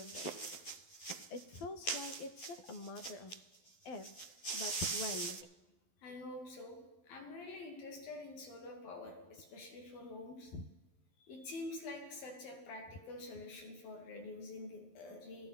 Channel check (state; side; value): late; right; 12 ms